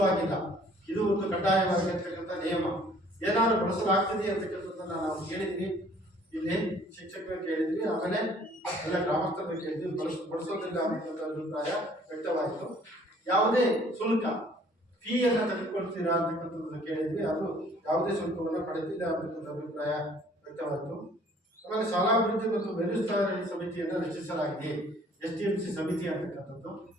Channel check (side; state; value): both; normal; correlation 0.57